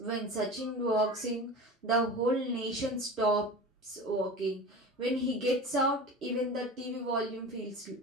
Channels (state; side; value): normal; both; correlation 0.33